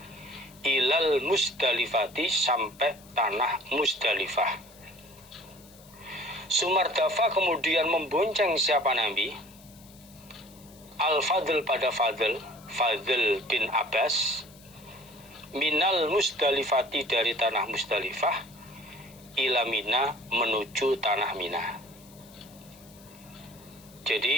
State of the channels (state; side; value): noise; left; hiss, 24 dB below the sound